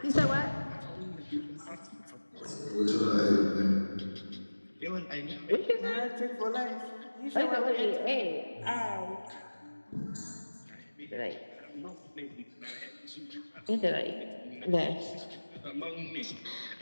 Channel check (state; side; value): inverted; both; correlation -1.00